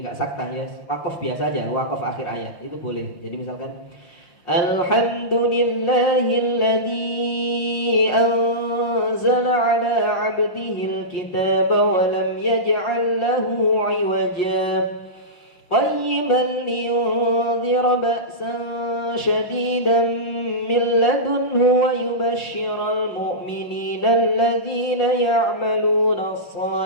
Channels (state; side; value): late; right; 5.6 ms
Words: nggak sakta ya, wakaf biasa aja, wakaf akhir ayat itu boleh. Jadi misalkan Alhamdulillahilladzi anzala ala 'abdihil kitaba wa lam yaj'al lahu 'iwaja qayyiman liyunzira ba'san syadidan min ladunhu wa yubashshiral mu'minina alladhina ya'maluna